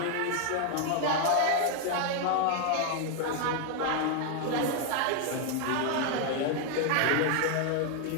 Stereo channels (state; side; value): different; both; correlation 0.01